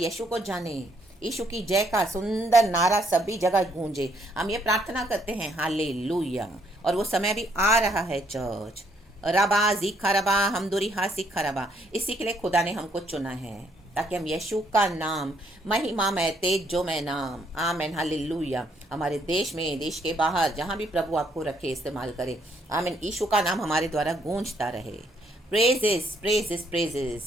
को जाने. यीशु की जय का सुंदर नारा सभी जगह गूंजे. हम ये प्रार्थना करते हैं हालेलुया. और वो समय भी आ रहा है चर्च. रबा जीखा रबा हमदुरी हा सीखा रबा. इसी के लिए खुदा ने हमको चुना है, ताकि हम यीशु का नाम, महिमा में तेज जो मैं नाम. आमेन. हालेलुया. हमारे देश में, देश के बाहर, जहाँ भी प्रभु आपको रखे, इस्तेमाल करे. आमेन. यीशु का नाम हमारे द्वारा गूंजता रहे. Praises, praises,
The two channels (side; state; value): both; normal; correlation 0.70